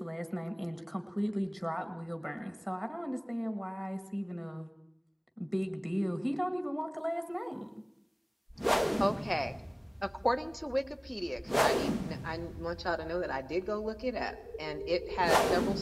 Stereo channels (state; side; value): identical; both; correlation 1.00